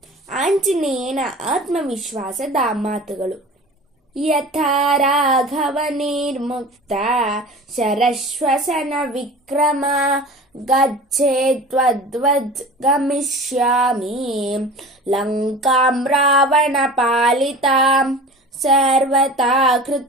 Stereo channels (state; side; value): normal; both; correlation 0.36